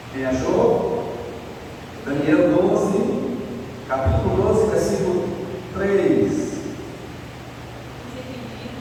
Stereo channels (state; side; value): identical; both; correlation 1.00